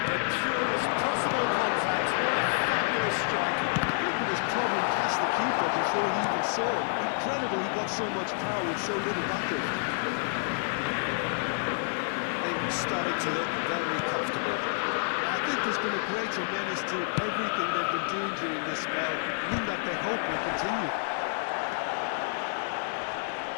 The purest possible contact. What a fabulous strike. I think it was probably past the keeper before he even saw it. Incredible he got so much power with so little backup. Starting to look very comfortable. I think there's been a greater menace to everything they've been doing during this spell, one that they hope will continue.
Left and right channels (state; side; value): silent; right; digital silence